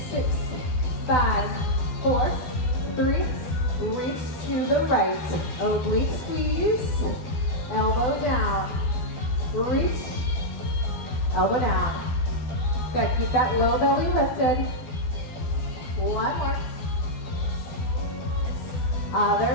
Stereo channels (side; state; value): right; late; 12 ms